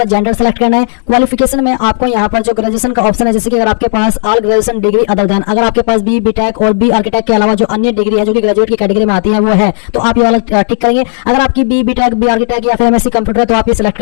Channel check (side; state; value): right; silent; 70 dB below the other